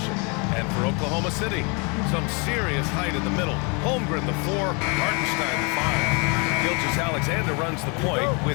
And for Oklahoma City, some serious height in the middle. Holmgren the 4, Hartenstein the 5. Gilgeous-Alexander runs the point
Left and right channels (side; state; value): right; quieter; 32.0 dB